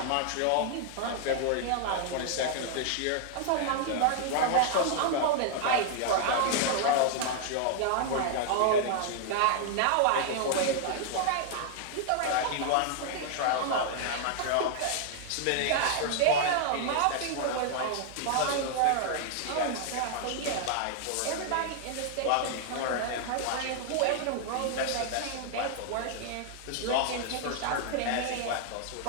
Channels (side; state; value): both; different; correlation 0.00